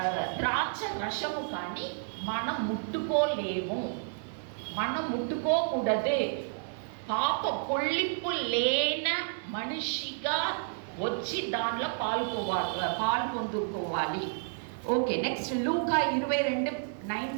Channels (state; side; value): silent; left; digital silence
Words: ద్రాక్ష రసము కానీ మనం ముట్టుకోలేము, మనం ముట్టుకోకూడదే. పొల్లింపు లేన మనిషిగా వచ్చి దానిలో పాలు పొందుకోవాలి. ఓకే, నెక్స్ట్ లూకా